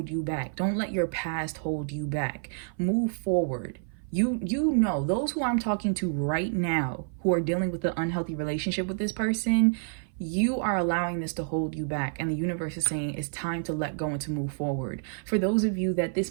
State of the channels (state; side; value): silent; left; 56 dB below the other